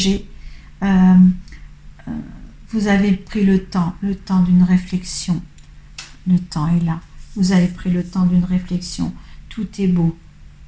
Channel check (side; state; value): both; identical; correlation 1.00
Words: Vous avez pris le temps d'une réflexion. Le temps est là. Vous avez pris le temps d'une réflexion. Tout est beau.